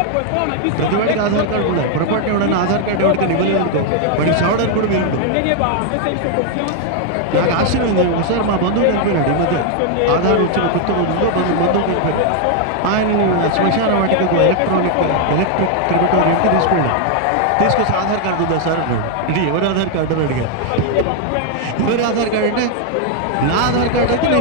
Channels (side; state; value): both; different; correlation 0.00